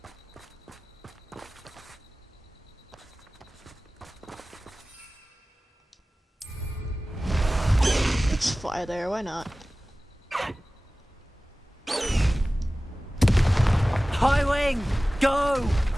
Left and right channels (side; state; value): both; normal; correlation 0.97